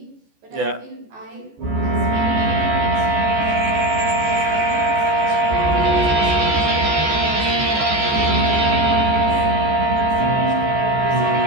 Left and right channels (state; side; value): late; left; 14 ms